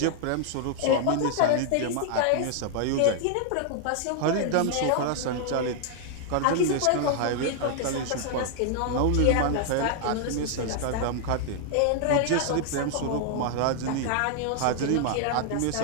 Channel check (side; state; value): both; different; correlation 0.00